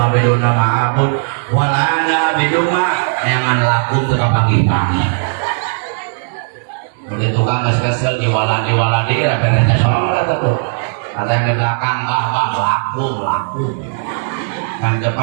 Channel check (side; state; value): left; silent; digital silence